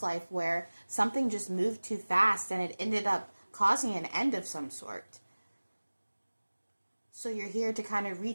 life where something just moved too fast and it ended up causing an end of some sort. So you're here to kind of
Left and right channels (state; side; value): inverted; both; correlation -1.00